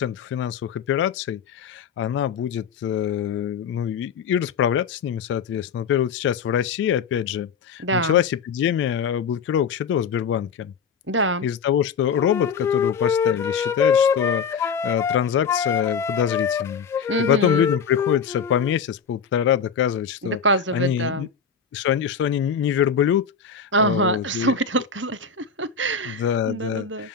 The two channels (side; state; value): right; quieter; 6.2 dB